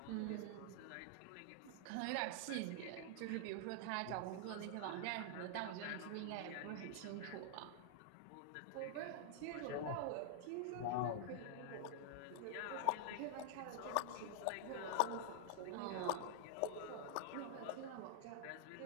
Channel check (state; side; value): different; both; correlation -0.01